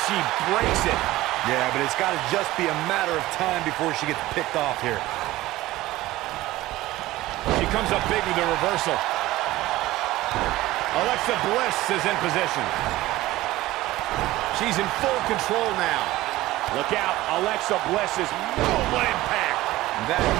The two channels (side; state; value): left; quieter; 17.2 dB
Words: She breaks it. Yeah, but it's got to just be a matter of time before she gets picked off here. She comes up big with the reversal. Alexa Bliss is in position. She's in full control now. Look out, Alexa Bliss is... Oh, what impact! That